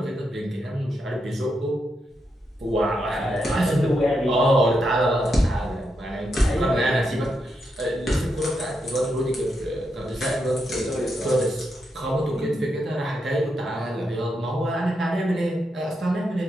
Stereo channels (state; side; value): normal; both; correlation 0.83